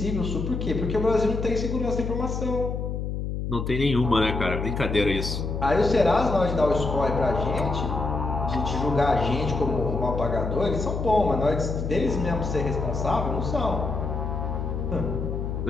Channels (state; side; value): noise; left; hum, 3 dB below the sound